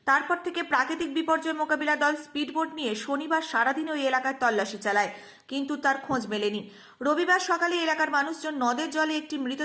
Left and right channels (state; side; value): identical; both; correlation 1.00